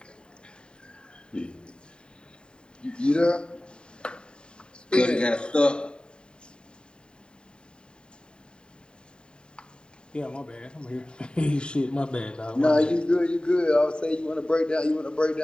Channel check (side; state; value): right; late; 0.050 ms